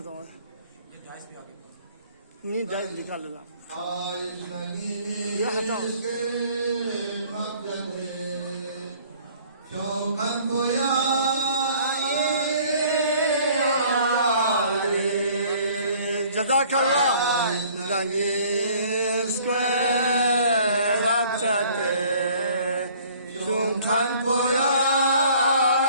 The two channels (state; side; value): inverted; both; correlation -0.54